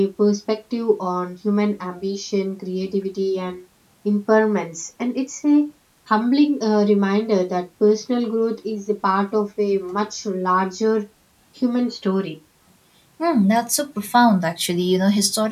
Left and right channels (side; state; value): both; identical; correlation 1.00